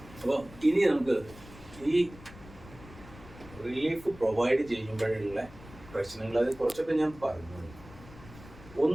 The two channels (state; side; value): noise; left; rumble, 19 dB below the sound